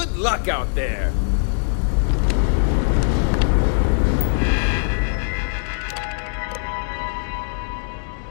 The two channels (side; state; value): right; silent; digital silence